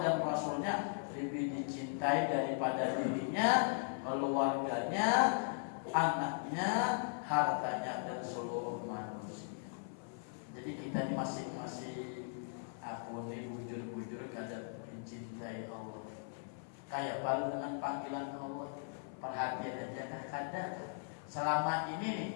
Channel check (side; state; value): right; silent; 52 dB below the other